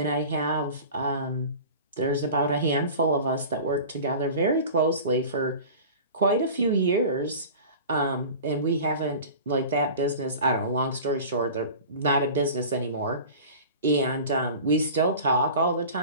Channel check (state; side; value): inverted; both; correlation -0.37